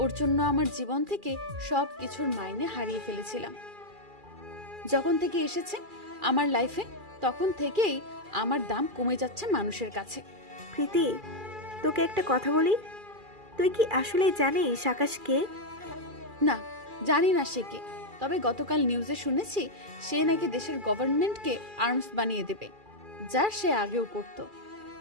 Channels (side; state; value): left; late; 2.4 ms